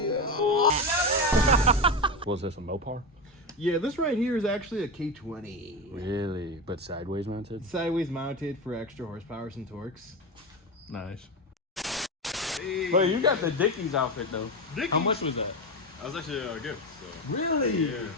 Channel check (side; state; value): both; normal; correlation 0.18